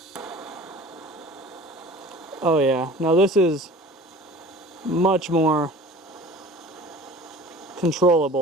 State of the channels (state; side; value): normal; both; correlation 0.44